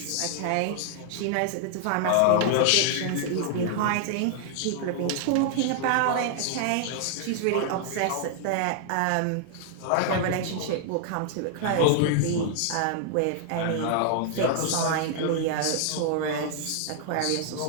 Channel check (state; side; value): different; both; correlation 0.00